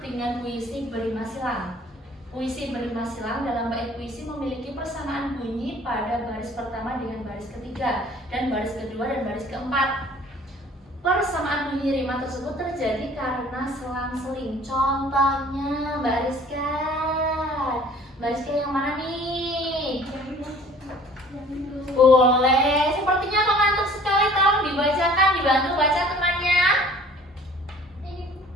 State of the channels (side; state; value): both; normal; correlation 0.51